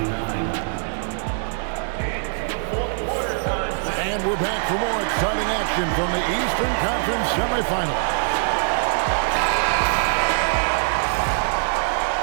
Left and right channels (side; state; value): left; silent; digital silence